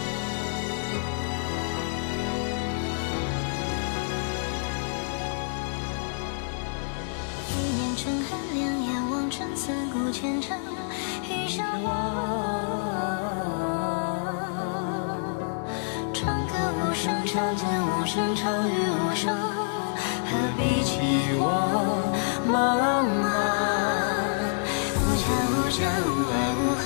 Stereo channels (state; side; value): silent; right; 60 dB below the other